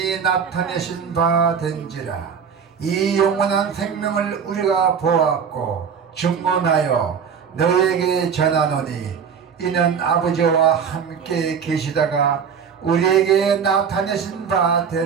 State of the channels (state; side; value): quieter; left; 6.9 dB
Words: 나타내신 바 된지라. 이 영원한 생명을 우리가 보았고 증언하여 너에게 전하노니 이는 아버지와 함께 계시다가 우리에게 나타내신 바